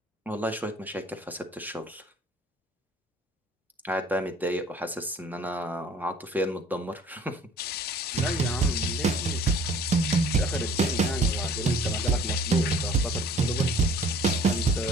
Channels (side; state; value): both; normal; correlation 0.53